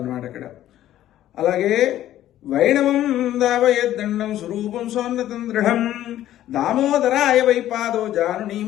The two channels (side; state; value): right; quieter; 12.9 dB